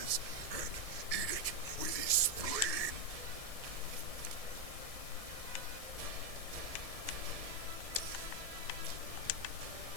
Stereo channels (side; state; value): left; late; 1.6 ms